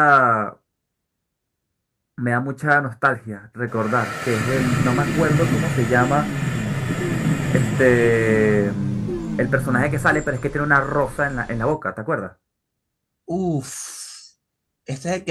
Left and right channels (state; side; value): identical; both; correlation 1.00